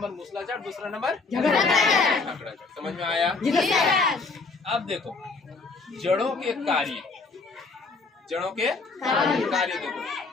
मूसला जड़, दूसरा नंबर झगड़ा जड़। समझ में आया? अब देखो जड़ों के कार्य, देखो।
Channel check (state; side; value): quieter; right; 4.1 dB